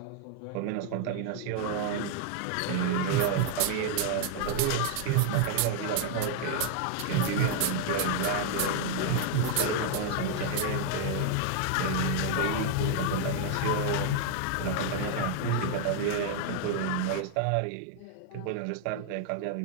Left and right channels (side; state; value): both; different; correlation 0.00